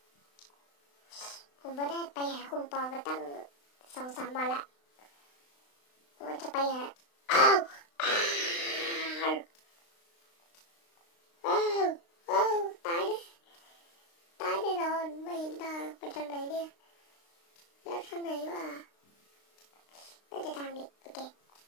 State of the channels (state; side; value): late; right; 35 ms